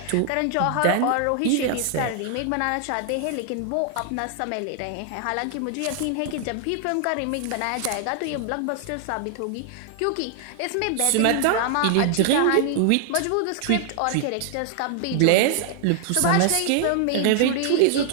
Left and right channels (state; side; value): different; both; correlation 0.00